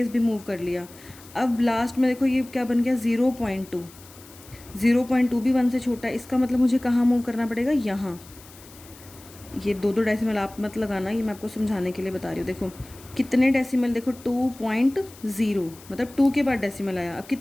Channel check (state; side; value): noise; left; hiss, 21 dB below the sound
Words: भी मूव कर लिया. अब लास्ट में देखो ये क्या बन गया? 0.2. 0.2 भी 1 से छोटा है, इसका मतलब मुझे कहाँ मूव करना पड़ेगा? यहाँ. ये दो डेसिमल आप मत लगाना, ये मैं आपको समझाने के लिए बता रही हूँ. देखो कितने डेसिमल? देखो 2.0, मतलब 2 के बाद डेसिमल आया. अब